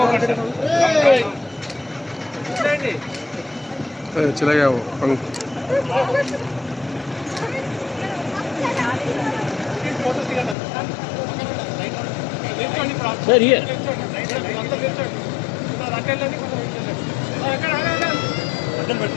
चला गया वो पंख सर ये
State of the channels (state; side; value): drops out; right; at 10.6 s